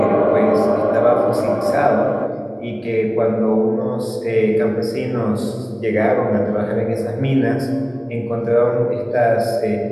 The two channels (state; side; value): identical; both; correlation 1.00